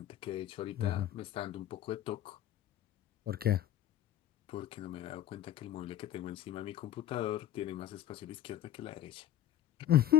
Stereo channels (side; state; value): right; quieter; 12.0 dB